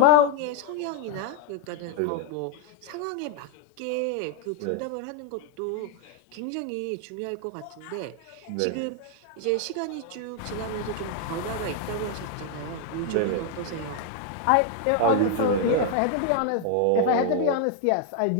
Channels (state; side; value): different; both; correlation 0.01